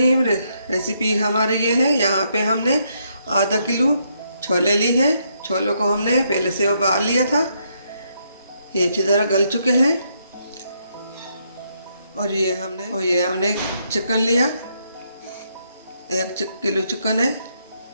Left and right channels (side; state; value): both; inverted; correlation -0.76